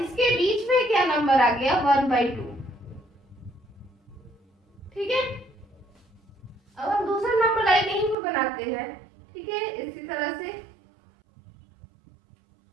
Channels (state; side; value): drops out; left; at 8.2 s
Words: बीच में क्या नंबर आ गया, 1/2। ठीक है, अब हम दूसरा नंबर लाइन यहीं पे बनाते हैं। ठीक है, इसी तरह से